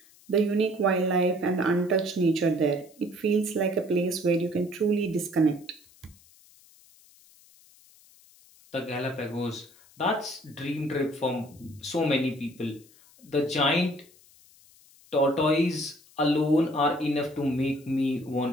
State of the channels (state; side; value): noise; left; hiss, 27 dB below the sound